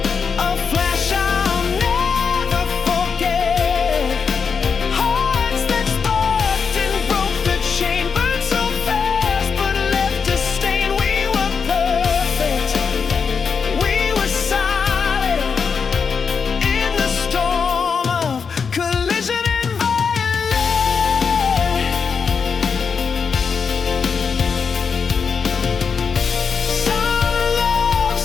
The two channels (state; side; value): quieter; right; 5.9 dB